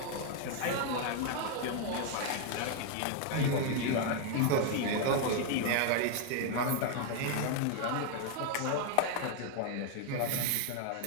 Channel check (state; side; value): different; both; correlation 0.01